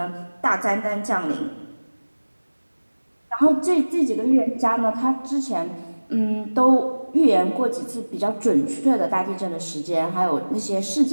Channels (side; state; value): both; inverted; correlation -1.00